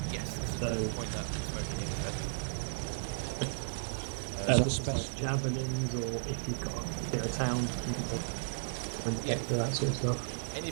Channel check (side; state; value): left; silent; 55 dB below the other